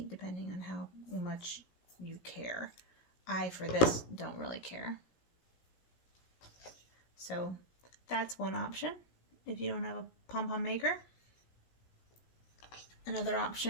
depending on how much you care. I, for this, don't really care. So that's one option if you don't have a Pompom Maker. Another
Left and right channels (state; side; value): late; right; 17 ms